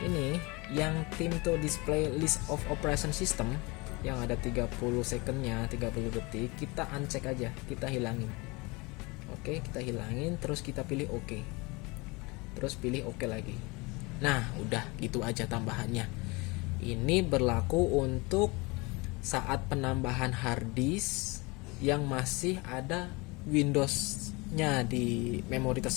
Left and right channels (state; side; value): quieter; right; 25.9 dB